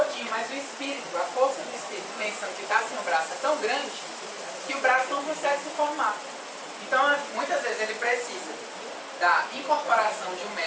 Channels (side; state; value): both; identical; correlation 1.00